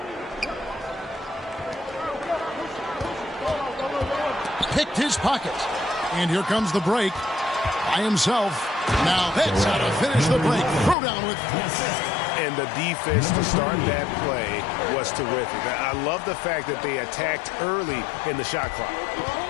Picked his pocket. And here comes the break by himself. Now that's how to finish the break. Throw down with And the defense to start that play was terrific. I love the fact that they attacked early in the shot clock.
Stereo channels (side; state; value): right; drops out; at 11.0 s